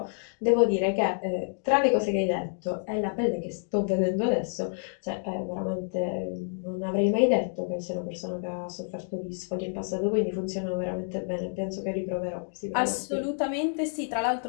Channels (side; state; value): right; silent; digital silence